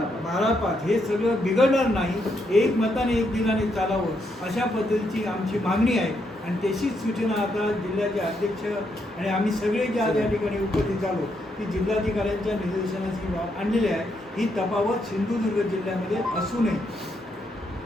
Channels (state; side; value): normal; both; correlation 0.78